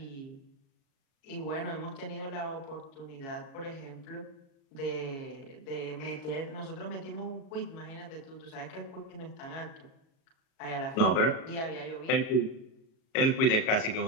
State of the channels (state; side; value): late; right; 37 ms